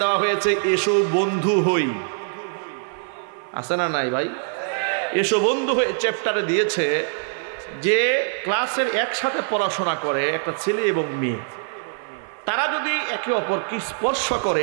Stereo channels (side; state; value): left; silent; 55 dB below the other